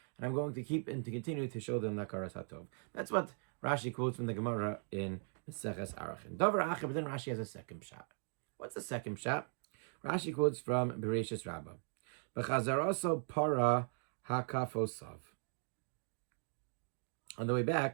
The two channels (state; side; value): silent; left; 52 dB below the other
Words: and I'm going to keep and to continue to show them hakaras hatov. That's what Rashi quotes from the Gemara in Maseches Arachin. Davar acher, but then Rashi has a second shot. What's the second shot? Rashi quotes from Bereshis Rabbah. B'chazaraso para hakafosav. On the way